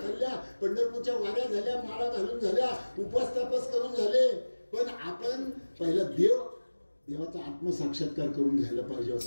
पंढरपूरच्या वाऱ्या झाल्या, माळा घालून झाल्या, उपास तापास करून झाले. पण आपण पहिला देवाचा आत्मसाक्षात्कार करून घ्यायला पाहिजे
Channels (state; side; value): inverted; both; correlation -1.00